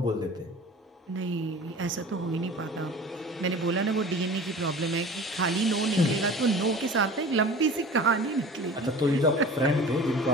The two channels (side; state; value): both; normal; correlation 0.40